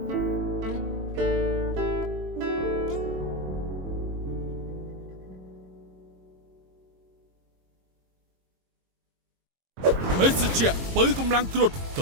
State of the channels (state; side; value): late; left; 22 ms